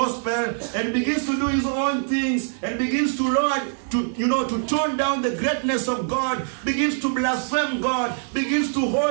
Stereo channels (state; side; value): silent; left; 63 dB below the other